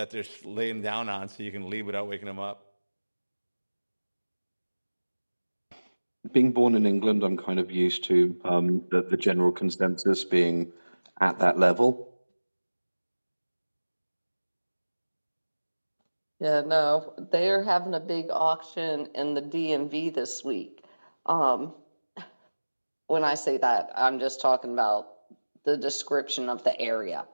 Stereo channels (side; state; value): both; inverted; correlation -1.00